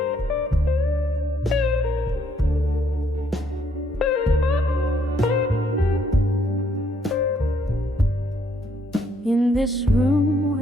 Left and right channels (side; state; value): both; normal; correlation 0.69